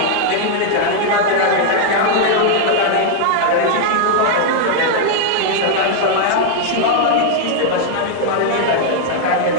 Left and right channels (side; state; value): both; different; correlation -0.01